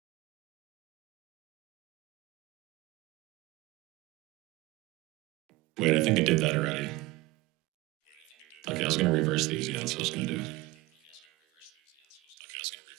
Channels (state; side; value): quieter; left; 19.7 dB